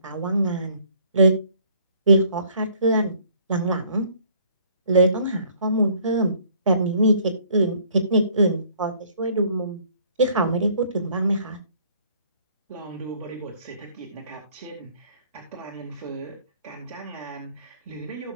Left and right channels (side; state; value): both; inverted; correlation -0.59